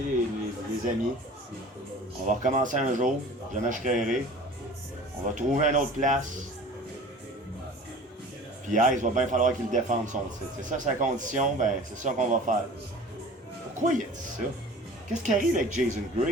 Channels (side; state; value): both; normal; correlation 0.42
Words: les amis. On va recommencer un jour. Jamais je créerai. On va trouver une autre place. Puis Ice, va bien falloir qu'il défende son titre. C'est ça sa condition, ben, c'est ça qu'on va faire. Pourquoi il a dit ça? Qu'est-ce qui arrive avec Jason